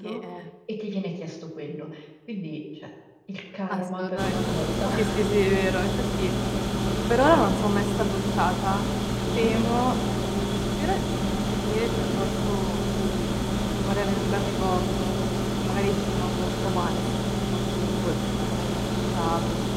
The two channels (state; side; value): identical; both; correlation 1.00